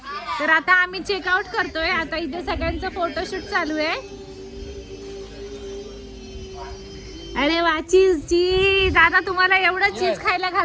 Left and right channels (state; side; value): identical; both; correlation 1.00